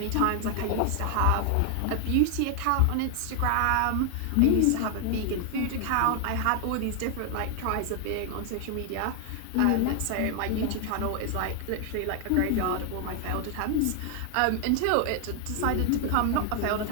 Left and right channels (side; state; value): both; different; correlation 0.00